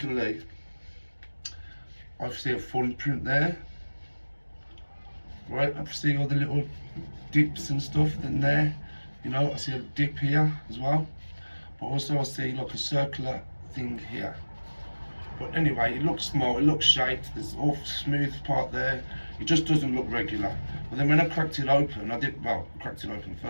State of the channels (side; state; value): both; inverted; correlation -1.00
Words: I see a footprint there, right? I see all the little dips and stuff in there. You know, I see a dip here as well. But also I see like a circular thing here. But anyway, it looks small, it looks shaped, there's all smooth part there. It just doesn't look regular. But then when I cracked it open, I cracked it open